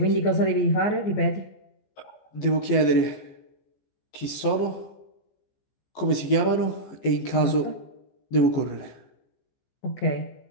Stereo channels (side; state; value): right; late; 14 ms